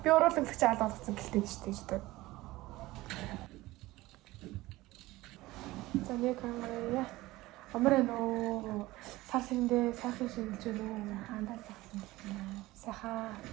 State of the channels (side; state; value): left; quieter; 18.7 dB